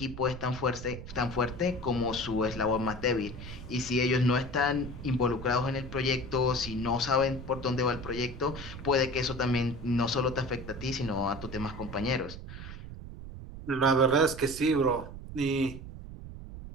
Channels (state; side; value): noise; right; rumble, 11 dB below the sound